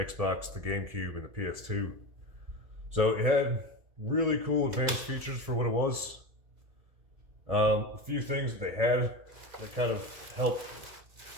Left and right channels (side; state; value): left; late; 1.7 ms